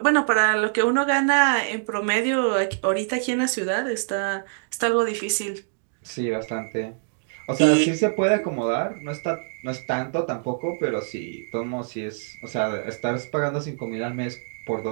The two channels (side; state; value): left; silent; digital silence